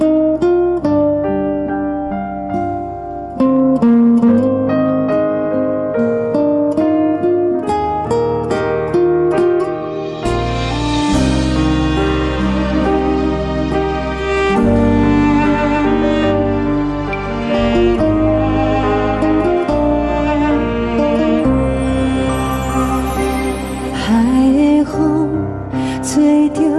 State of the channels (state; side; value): identical; both; correlation 1.00